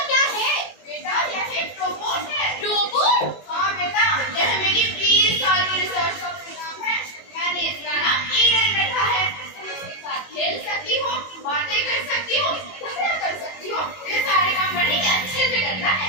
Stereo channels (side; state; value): right; late; 22 ms